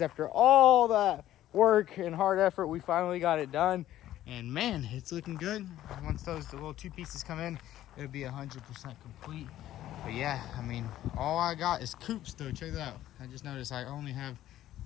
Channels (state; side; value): quieter; right; 13.3 dB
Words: after all that work and hard effort, we finally got it done. And man, it's looking good. Once the little two pieces come in, it'll be 100% complete. But yeah, I mean, all I got is coupes though. Check that out. I just noticed I only have